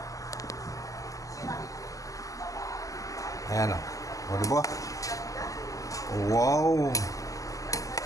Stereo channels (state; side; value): late; right; 0.16 ms